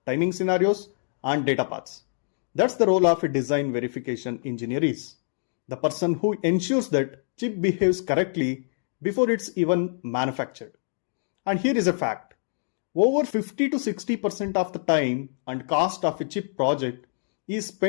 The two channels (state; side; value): silent; right; digital silence